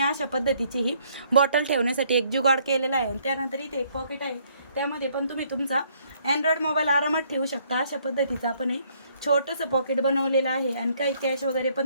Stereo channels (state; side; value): inverted; both; correlation -0.66